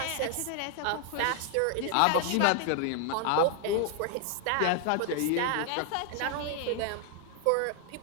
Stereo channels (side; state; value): both; different; correlation 0.00